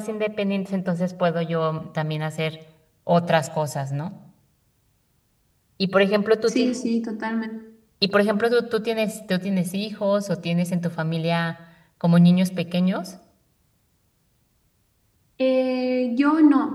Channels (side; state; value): both; identical; correlation 1.00